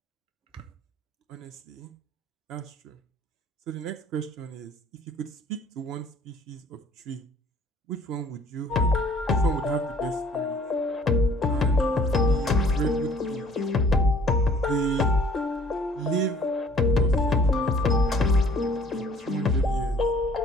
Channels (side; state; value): both; normal; correlation 0.55